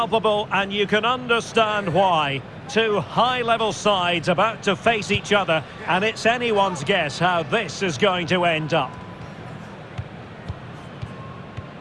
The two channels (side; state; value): both; identical; correlation 1.00